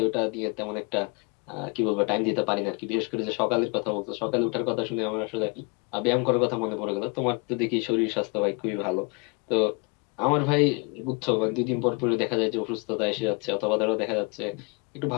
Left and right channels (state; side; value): quieter; right; 31.7 dB